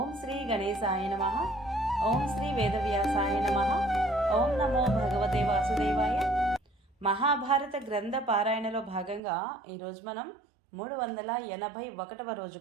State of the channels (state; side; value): drops out; left; at 9.2 s